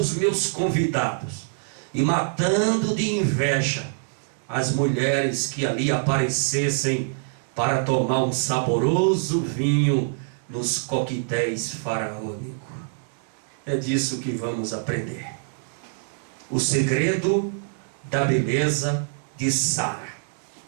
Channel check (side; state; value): left; silent; digital silence